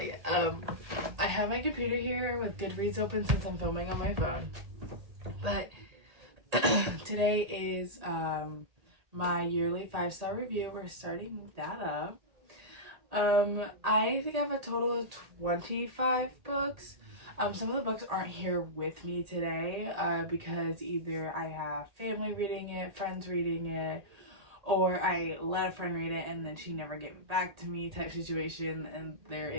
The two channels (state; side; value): late; left; 1.8 ms